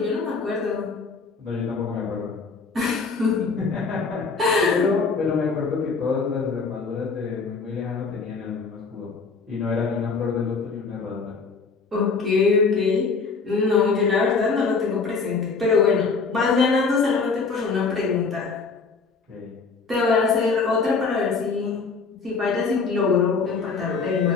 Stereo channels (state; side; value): quieter; right; 4.7 dB